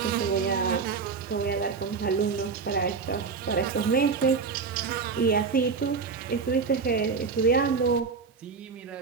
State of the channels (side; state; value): left; quieter; 5.2 dB